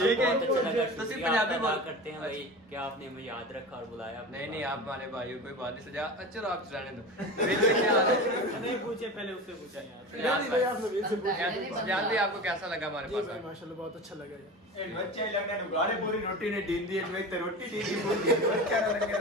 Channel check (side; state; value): both; normal; correlation 0.30